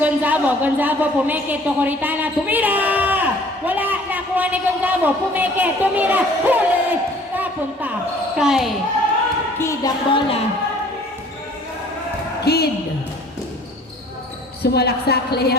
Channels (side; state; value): both; normal; correlation 0.53